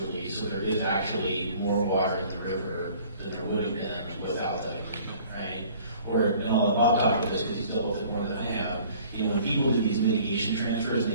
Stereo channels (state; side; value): inverted; both; correlation -0.52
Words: So there is actually more water in the river than there would have been without that agreement, right? Or, and I'll let Bob talk about this because he's dealt with it more than I have. When people do these mitigation transfers and